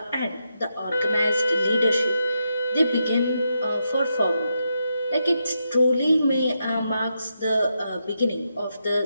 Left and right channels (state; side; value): inverted; both; correlation -0.84